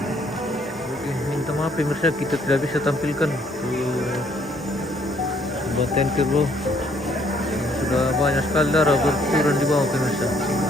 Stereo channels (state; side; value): normal; both; correlation 0.66